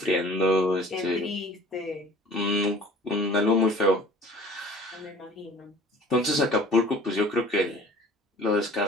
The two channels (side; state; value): both; normal; correlation 0.48